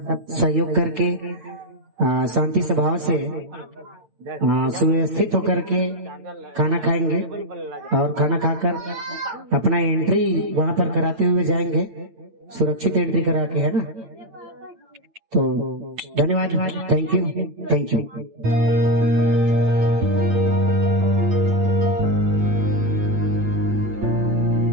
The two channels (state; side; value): late; left; 8.9 ms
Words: सहयोग करके शांति स्वभाव से सुव्यवस्थित होकर के खाना खाएंगे और खाना खाकर अपना एंट्री वहां पर कराते हुए जाएंगे, सुरक्षित एंट्री करा के, है ना। तो धन्यवाद, थैंक यू।